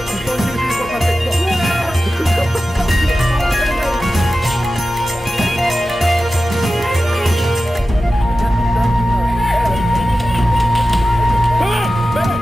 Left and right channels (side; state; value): both; normal; correlation 0.94